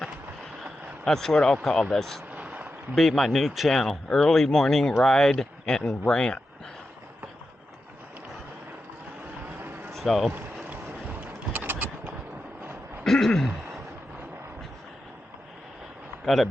That's what I'll call this. Be my new channel, early morning ride and rant. So got a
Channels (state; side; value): normal; both; correlation 0.89